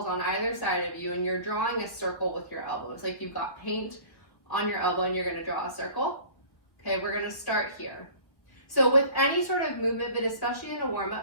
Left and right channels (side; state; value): right; late; 1.3 ms